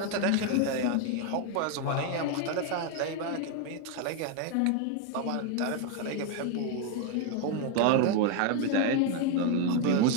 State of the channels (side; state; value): both; different; correlation 0.01